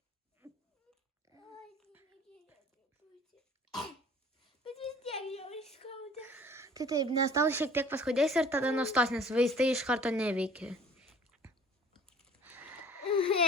Bet vis tiek jau skauda. Tai taip, nes tau šiek tiek paskaudės ir tada nustos, nes vaistai iš karto neveikia.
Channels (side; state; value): both; normal; correlation 0.50